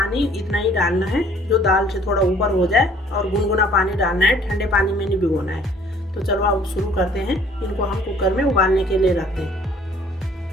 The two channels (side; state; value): both; normal; correlation 0.57